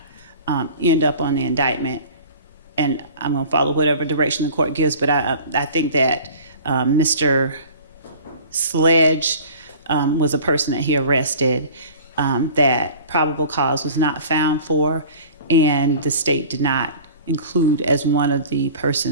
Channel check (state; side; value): inverted; both; correlation -0.43